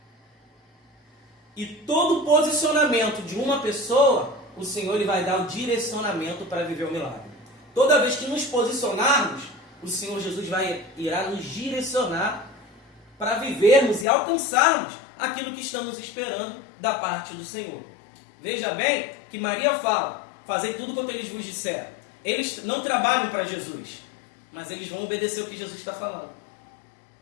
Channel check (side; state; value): right; drops out; at 14.1 s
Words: E todo posicionamento de uma pessoa, o Senhor ele vai dar o direcionamento para viver o milagre. Toda vez que nos posicionarmos, o Senhor Jesus irá nos direcionar para vivermos e alcançarmos aquilo que estamos esperando da parte do Senhor. Veja bem que Maria fala, fazei tudo quanto eles vos disseram. Eles não trabalham para Jesus, mas eles vão obedecer o que Jesus está falando.